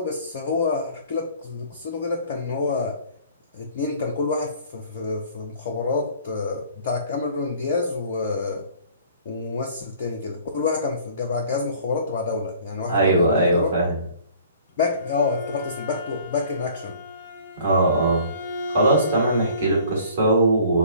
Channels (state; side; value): inverted; both; correlation -0.52